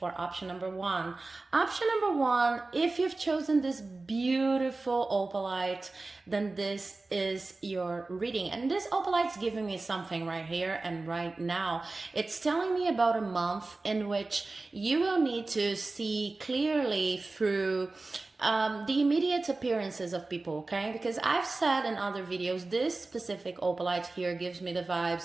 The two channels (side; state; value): left; quieter; 3.4 dB